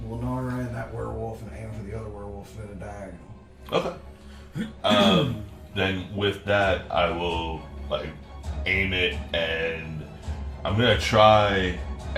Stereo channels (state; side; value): identical; both; correlation 1.00